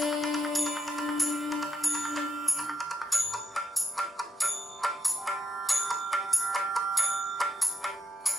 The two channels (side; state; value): both; normal; correlation 0.80